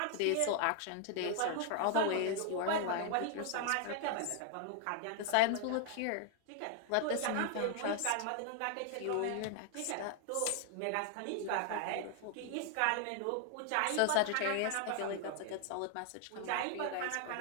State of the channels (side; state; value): both; different; correlation 0.00